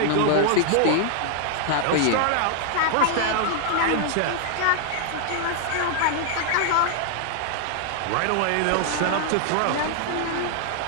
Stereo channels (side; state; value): both; different; correlation 0.00